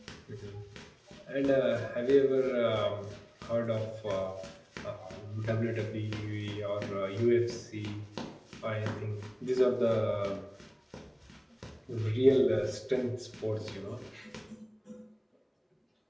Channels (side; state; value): both; identical; correlation 1.00